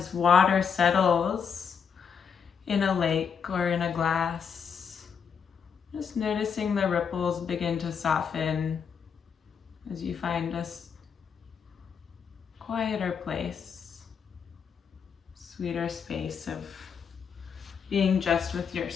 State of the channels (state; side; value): quieter; right; 6.7 dB